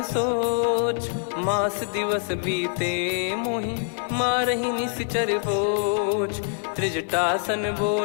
सोच। मास दिवस बीते मोहि मारहि निश्चर बोझ। त्रिजटासन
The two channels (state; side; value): silent; right; 62 dB below the other